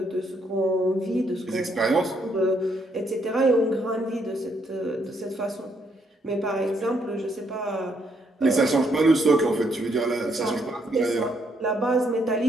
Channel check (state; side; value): normal; both; correlation 0.73